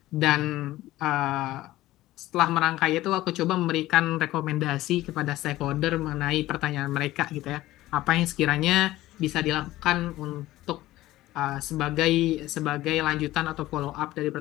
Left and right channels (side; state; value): right; quieter; 16.4 dB